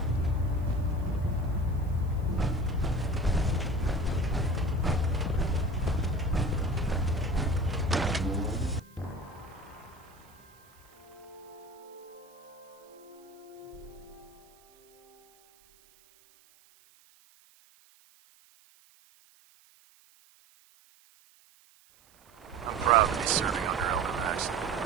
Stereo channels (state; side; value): noise; right; hiss, 29 dB below the sound